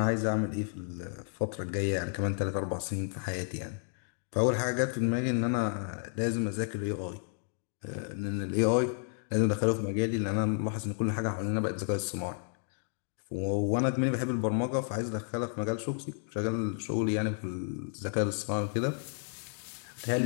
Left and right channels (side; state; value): right; silent; 57 dB below the other